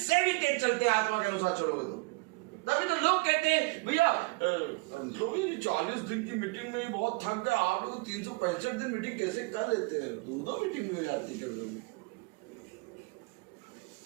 भी तेज चलते हैं आत्मा के अनुसार चलोगे तो। तभी तो लोग कहते हैं भैया 40 दिन की मीटिंग में ही बहुत थक गए, आप लोग 365 दिन मीटिंग कैसे कर लेते हैं? 2 मीटिंग में आती कर लोगे।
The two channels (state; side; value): quieter; left; 26.7 dB